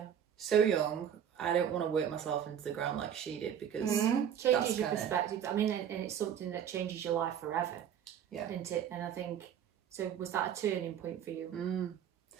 So young. I don't want to work myself into the ground like she did, because changes your perspective. I mean, and it's something that changes your life forever. Yeah. Isn't it? And I think, so was that a turning point for you?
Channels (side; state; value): left; quieter; 9.1 dB